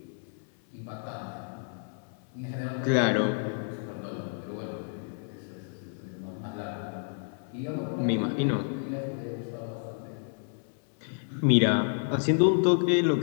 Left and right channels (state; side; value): silent; right; 58 dB below the other